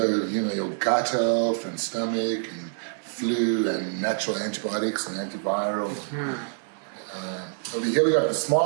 your gut health and stomach and flu and natural antibiotics and antivirals. Over here we got the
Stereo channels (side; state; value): left; silent; digital silence